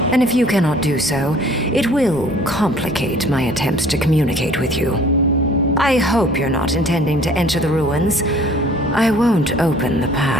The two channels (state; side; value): normal; both; correlation 0.53